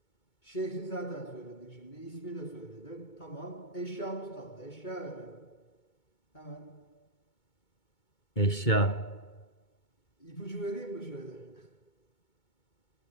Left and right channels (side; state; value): right; late; 2.2 ms